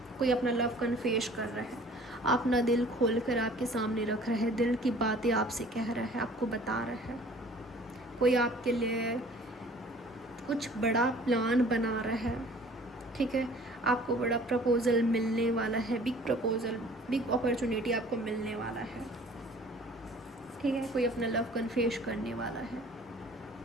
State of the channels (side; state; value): both; normal; correlation 0.50